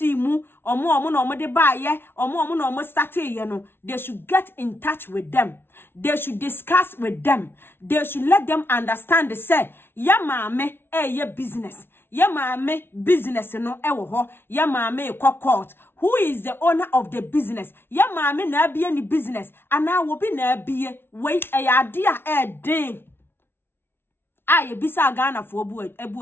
mu omo na omo de ba ye omo na omo start ye no they should get in touch with them they should discuss with them they should let them understand say ya maame ye business ya maame business no e wo ho ya maame court who is the owner of the business ya maame na bie ni business ana wo bi na bie wei ade a den aye bisa Ghana fo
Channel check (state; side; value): late; right; 0.11 ms